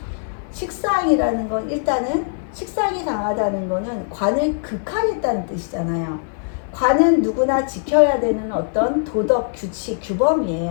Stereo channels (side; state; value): right; silent; 55 dB below the other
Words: 식상이라는 건 일단은 식상이 강하다는 거는 관을 극하겠다는 뜻이잖아요. 관은 누구나 지켜야 되는 어떤 도덕, 규칙,